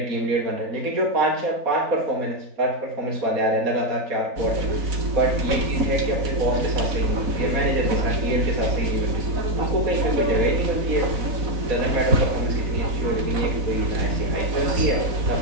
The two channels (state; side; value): late; left; 4.0 ms